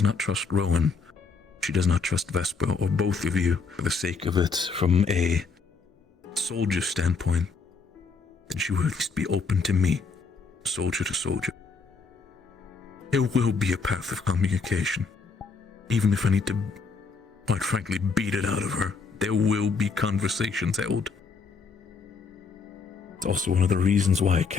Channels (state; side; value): quieter; right; 4.8 dB